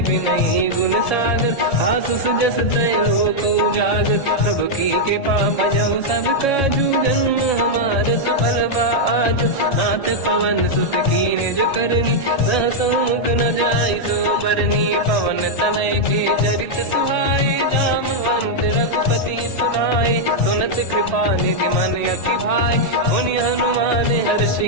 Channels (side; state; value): right; late; 1.7 ms